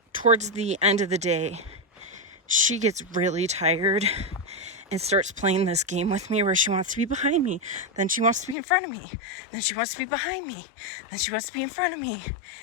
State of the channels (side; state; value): right; drops out; at 8.6 s